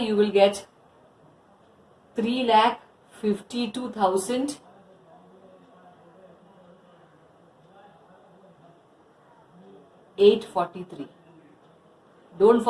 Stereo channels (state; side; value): identical; both; correlation 1.00